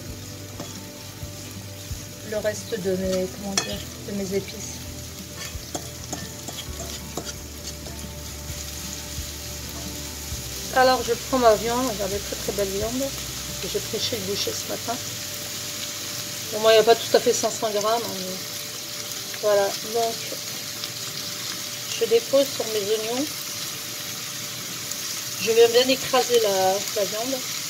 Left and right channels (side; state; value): both; identical; correlation 1.00